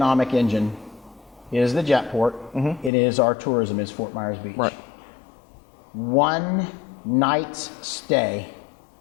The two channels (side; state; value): right; drops out; at 2.9 s